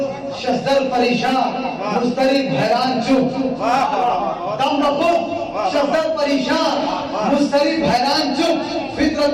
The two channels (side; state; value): both; identical; correlation 1.00